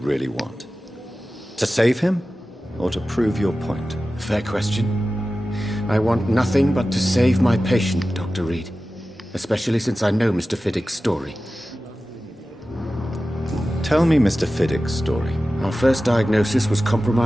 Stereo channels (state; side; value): normal; both; correlation 0.95